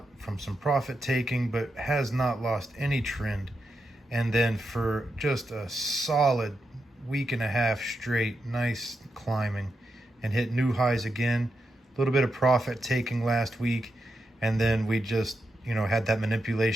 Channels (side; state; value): both; normal; correlation 0.86